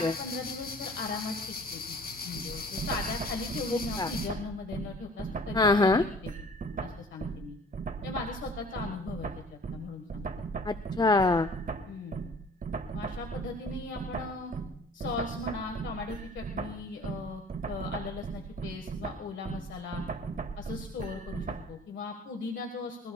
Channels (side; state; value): both; normal; correlation 0.49